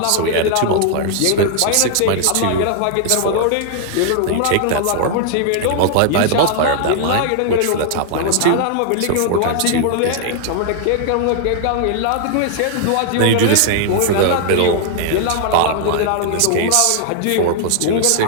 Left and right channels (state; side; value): different; both; correlation -0.01